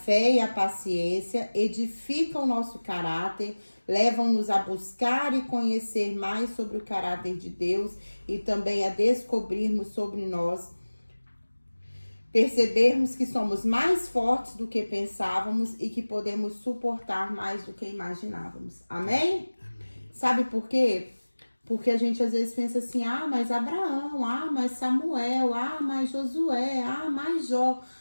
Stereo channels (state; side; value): inverted; both; correlation -1.00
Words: e a paciência edificam o nosso caráter, levam-nos a buscar e conhecer mais sobre o caráter de Deus e também a descobrirmos sobre nós, percebermos que somos mais fortes do que pensávamos e que podemos suportar mais do que imaginávamos. Amém? Sabe por quê? Porque a gente às vezes pensa assim: mas Abraão, mas Samuel, mas Josué, mais Jó.